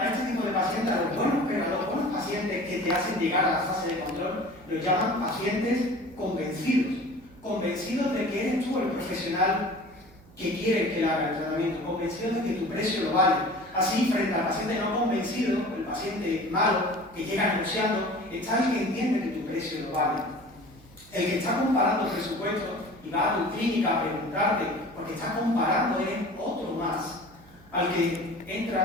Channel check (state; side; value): noise; right; hum, 25 dB below the sound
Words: este tipo de pacientes, a los buenos pacientes que te hacen llegar a la fase de control, los llaman pacientes convencidos de que eres tú el profesional que quiere que le haga el tratamiento, convencidos de que tu precio lo vale. Así, frente al paciente no convencido, el paciente malo, que llega negociando, está el que entiende que tu precio lo vale. El que está comparando presupuestos y va a tu clínica a preguntarte, porque está comparando es otro más, al que